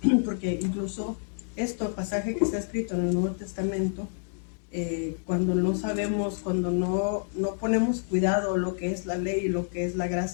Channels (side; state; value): right; silent; digital silence